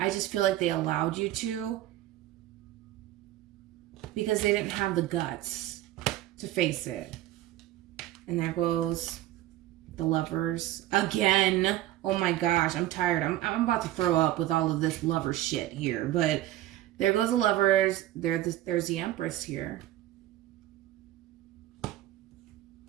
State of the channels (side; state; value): left; quieter; 14.6 dB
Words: just feel like they allowed you to because they didn't have the guts to face it. And there goes the Lovers again. Oh my gosh, I'm tired. I'm about to throw up with all of this lover shit here. But there goes the Lovers. There's the Empress here.